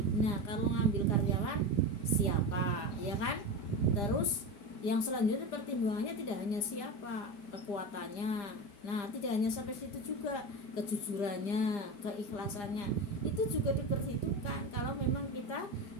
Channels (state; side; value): late; right; 4.9 ms